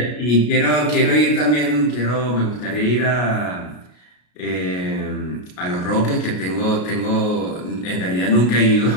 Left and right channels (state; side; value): late; right; 33 ms